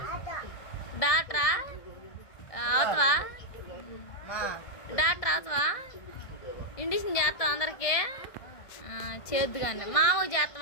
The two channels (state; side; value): late; right; 1.5 ms